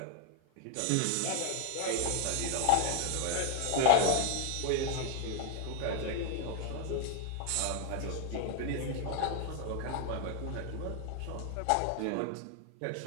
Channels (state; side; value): different; both; correlation 0.01